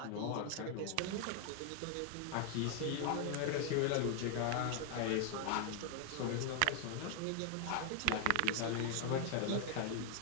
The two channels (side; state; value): both; different; correlation 0.00